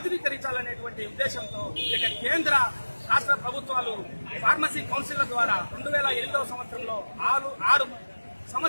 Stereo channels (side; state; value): both; inverted; correlation -1.00